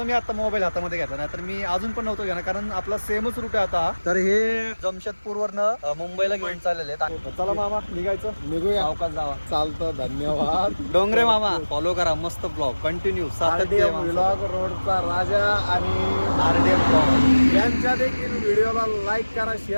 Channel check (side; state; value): both; inverted; correlation -1.00